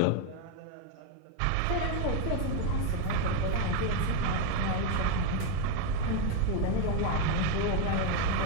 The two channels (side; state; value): both; different; correlation 0.02